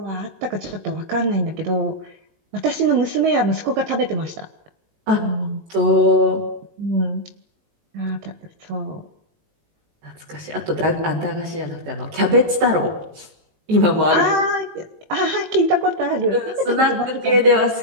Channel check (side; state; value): left; late; 19 ms